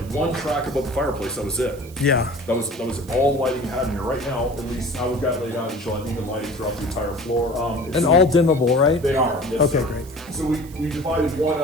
one track above the fireplace, that was it. Yeah. That was all lighting you had in here. Right now, at least how we've got it laid out, you'll have even lighting throughout the entire floor. And all dimmable, right? They are, yes, Okay, sir. great. So we divided one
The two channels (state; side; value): noise; right; hiss, 21 dB below the sound